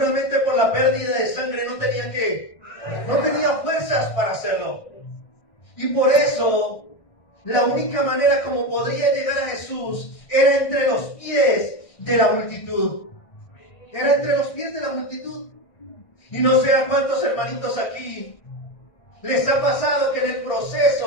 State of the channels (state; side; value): late; right; 1.6 ms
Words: por la pérdida de sangre no tenía fuerzas para hacerlo. Y por eso la única manera como podría llegar a Jesús era entre los pies de la multitud. Era entre los pies de la multitud. Y no sé a cuántos hermanitos aquí les ha pasado que en el